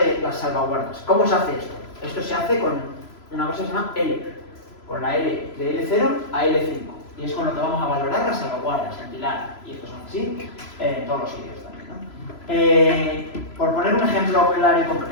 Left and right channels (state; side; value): late; right; 3.0 ms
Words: las salvaguardas. ¿Cómo se hace esto? Esto se hace con una cosa que se llama L, con la L de L0 a L5, y es con lo que vamos a valorar las salvaguardas, en pilar, y estos son así en todos los sitios también, ¿no? Por poner un ejemplo claro y